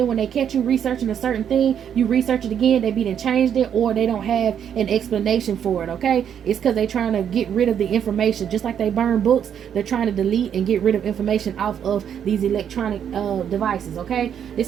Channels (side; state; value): left; quieter; 8.7 dB